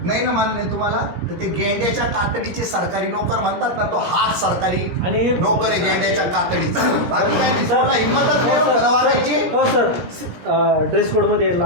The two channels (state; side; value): late; left; 17 ms